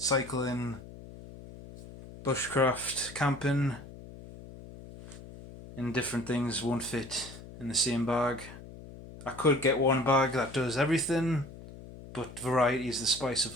bushcraft, camping, and different things won't fit in the same bag. I could get one bag that does everything, but variety is the spice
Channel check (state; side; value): noise; left; hum, 16 dB below the sound